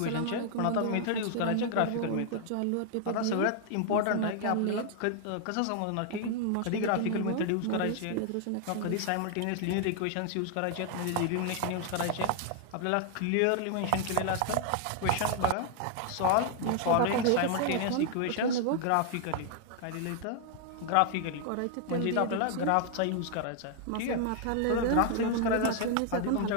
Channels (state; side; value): different; both; correlation 0.00